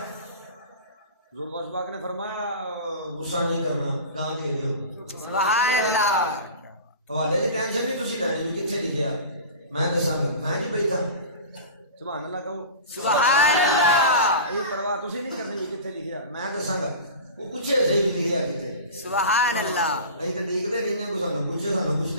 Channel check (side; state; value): both; inverted; correlation -0.33